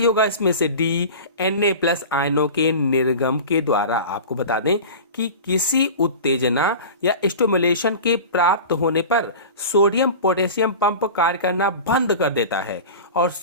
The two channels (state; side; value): inverted; both; correlation -0.33